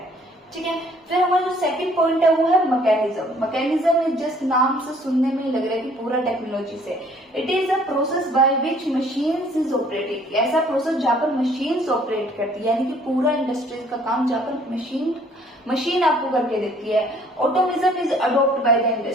ठीक है, फिर हमारा जो सेकंड पॉइंट है वो है मैकेनिज्म। मैकेनिज्म इज जस्ट, नाम से सुनने में ही लग रहा है कि पूरा टेक्नोलॉजी से। It is a process by which machines is operating, ऐसा प्रोसेस जहां पर मशीन्स ऑपरेट करती है, यानी कि पूरा इंडस्ट्रीज का काम जहां पर मशीन आपको करके देती है। Automation is adopt by the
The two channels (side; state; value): both; normal; correlation 0.58